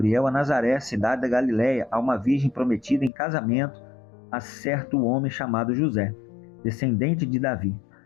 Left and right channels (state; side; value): drops out; right; at 3.1 s